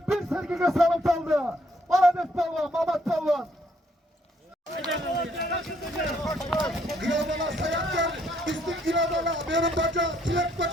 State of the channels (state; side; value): normal; both; correlation 0.69